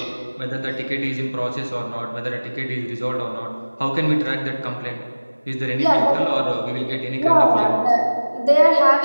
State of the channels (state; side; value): inverted; both; correlation -1.00